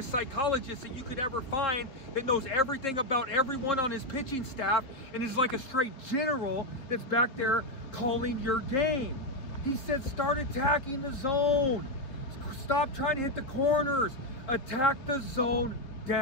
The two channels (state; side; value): late; right; 3.9 ms